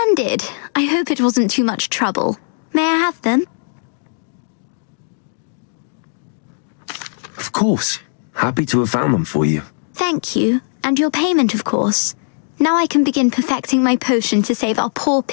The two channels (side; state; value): right; silent; digital silence